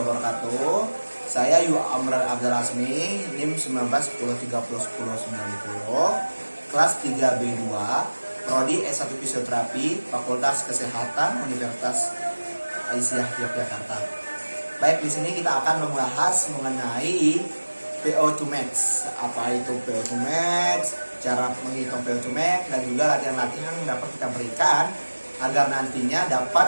Saya Yu Amran Abdul Rasmi, NIM 1910301090, kelas 3B2, Prodi S1 Fisioterapi, Fakultas Kesehatan Universitas Aisyah Yogyakarta. Baik, di sini kita akan membahas mengenai PO2 Max. Apa itu PO2 Max? Cara menghitung PO2 Max dan juga latihan-latihan yang dapat kita berikan agar nantinya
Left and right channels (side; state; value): both; inverted; correlation -1.00